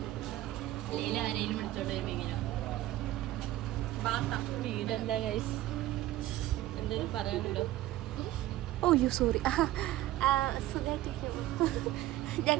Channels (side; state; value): left; quieter; 15.3 dB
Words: ലീല ആരെയും വിളിച്ചോണ്ട് വരുമ്പോ വീടെന്താ ഗൈസ്, എന്തെങ്കിലും പറയാനുണ്ടോ? ഓയ്യോ സോറി. സുഖമായിട്ടിരിക്കും.